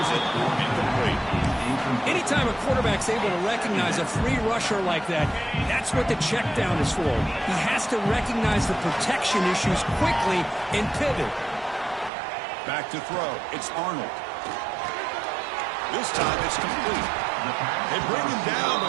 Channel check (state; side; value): drops out; left; at 12.1 s